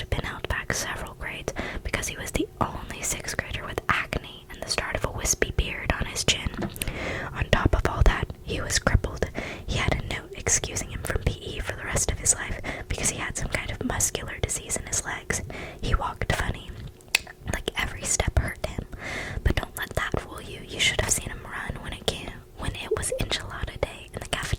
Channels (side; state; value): both; identical; correlation 1.00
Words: been held back several grades because he was the only 6th grader with acne and the start of a wispy beard on his chin. On top of all that, he was crippled. He had a note excusing him from PE for the rest of his life because he had some kind of muscular disease in his legs. He walked funny, like every step hurt him. But don't let that fool you. You should have seen him run when it was enchilada day in the